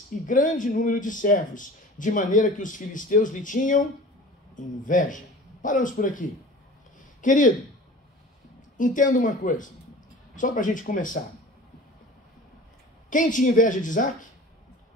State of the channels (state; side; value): normal; both; correlation 0.40